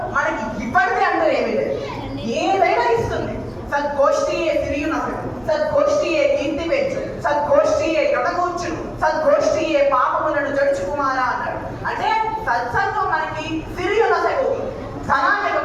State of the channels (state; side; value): identical; both; correlation 1.00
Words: మనకి ఇవ్వడితే అంటూ ఏమీ లేదు, ఏదైనా ఇస్తుంది. సద్గోష్ఠియే సిరియునసడు, సద్గోష్ఠియే కీర్తి పెంచు, సద్గోష్ఠియే ఎడగూర్చును, సద్గోష్ఠియే పాపములను జడుచు కుమారా అన్నాడు. అంటే సత్సంగం మనకి సిరియునసడు, ధనాన్ని